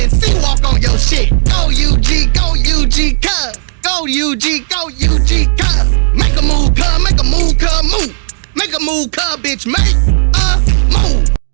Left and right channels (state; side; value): silent; left; digital silence